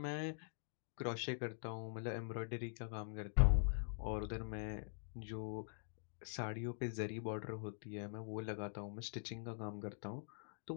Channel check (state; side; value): silent; right; digital silence